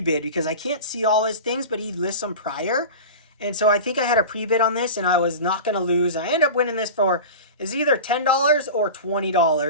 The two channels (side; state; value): both; inverted; correlation -0.31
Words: because I can't see all his things, but he lists them prior. And so I think I had a pre-bid on this, and I was not going to lose. I ended up winning this for, is either $10 or